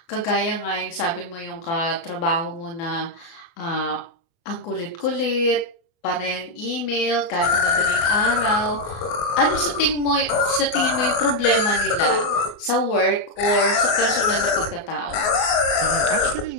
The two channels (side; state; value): right; late; 24 ms